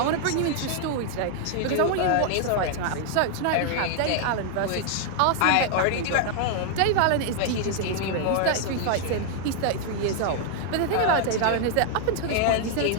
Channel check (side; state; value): both; different; correlation 0.00